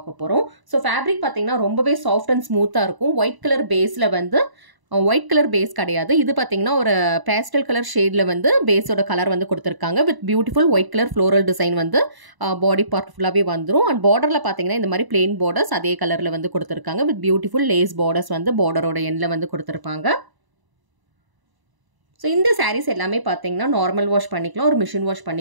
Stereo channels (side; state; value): left; late; 1.0 ms